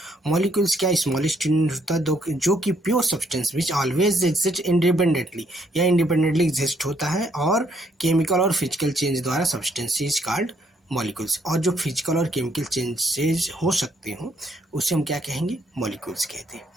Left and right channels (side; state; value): both; normal; correlation 0.70